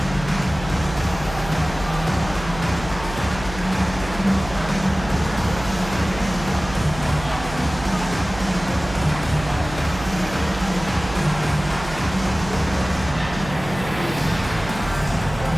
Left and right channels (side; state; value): right; noise; hum, 12 dB below the sound